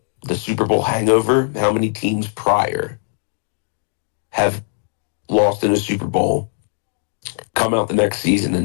the Super Bowl hangover. How many teams prior have lost in a Super Bowl, come out the next season,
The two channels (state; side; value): silent; right; digital silence